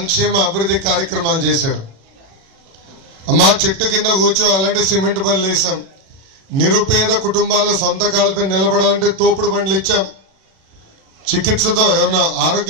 అభివృద్ధి కార్యక్రమాలు చేశారు. అమ్మా చెట్టు కింద కూర్చోవాలంటే సిమెంట్ బళ్ళు వేసాం. నిరుపేద కుటుంబాల సొంత కాళ్ళపై నిలబడాలంటే తోపుడు బండ్లు ఇచ్చాం. చికిత్సతో ఏమన్నా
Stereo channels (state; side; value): late; left; 37 ms